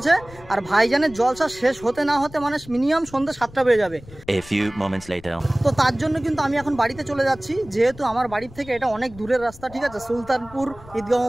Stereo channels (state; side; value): noise; left; rumble, 20 dB below the sound